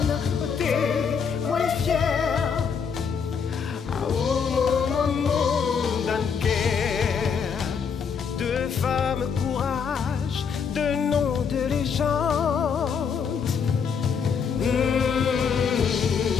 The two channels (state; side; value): quieter; right; 6.4 dB